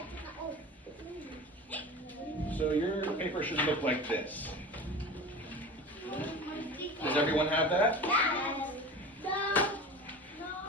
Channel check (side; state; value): both; normal; correlation 0.34